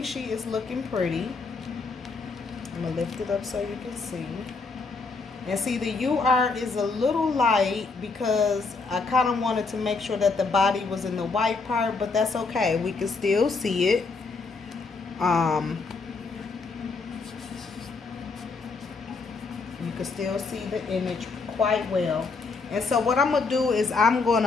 she is looking pretty. I'm gonna lift it up so you can see. And see, the UR is a little light because I kind of wanted to make sure that the body was in the white part, but that's okay. We can still see it. You can still see the image quite well. And so what I'm going to do is I'm going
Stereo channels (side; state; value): right; quieter; 4.2 dB